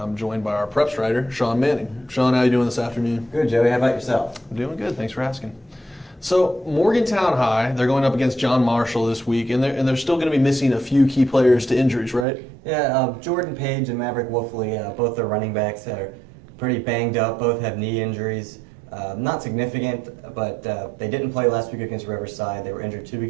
joined by our preps writer, Sean Manning. Sean, how are you doing this afternoon? Good, Joey. How about yourself? I'm doing good. Thanks for asking. So, Morgantown High, they're going up against John Marshall this week, and they're still going to be missing a few key players to injuries, right? Yeah, Jordan Page and Maverick Wolfley, both their running backs are pretty banged up. Both have knee injuries. Not significant, but they didn't play last week against Riverside. They were injured 2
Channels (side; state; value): left; drops out; at 12.2 s